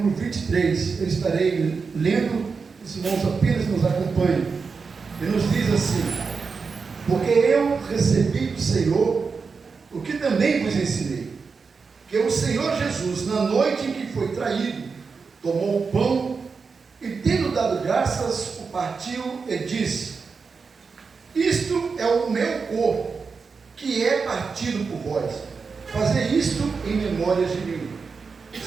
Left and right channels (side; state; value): left; quieter; 5.0 dB